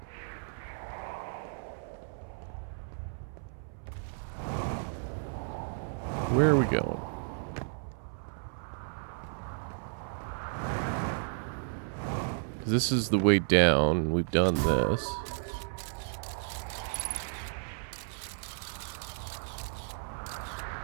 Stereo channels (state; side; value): silent; left; 56 dB below the other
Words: Where are we going? Because this is the way down, and we've done this.